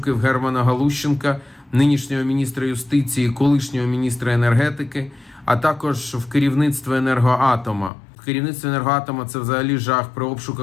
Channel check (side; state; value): right; drops out; at 7.9 s